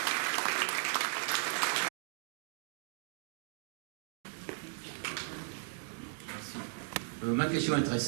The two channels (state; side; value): silent; left; digital silence